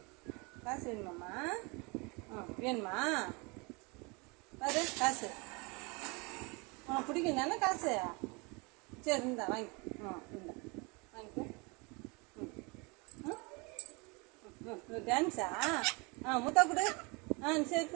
காசு வேணுமாம்மா? வேணுமா? பாரு காசு உனக்கு பிடிக்கும் தானே காசு? சரி இந்தா வாங்கி இந்தா வாங்கிக்கோ. டான்ஸா? முத்தா கொடு. சரி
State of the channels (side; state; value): left; quieter; 28.9 dB